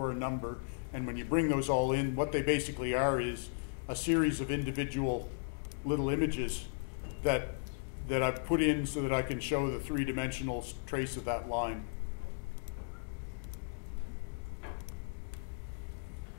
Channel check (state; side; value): silent; right; digital silence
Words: a number, and when you bring those all in, what they basically are is a series of individual little images that I've put in so that I can show the three-dimensional trace of that line.